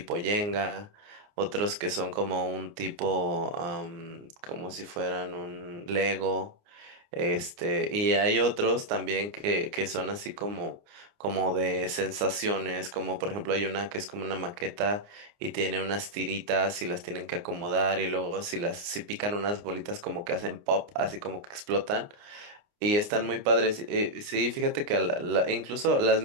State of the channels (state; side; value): late; left; 29 ms